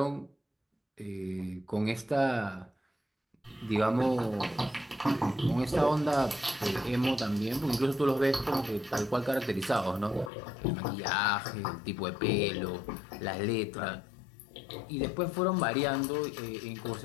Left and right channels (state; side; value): drops out; right; at 10.3 s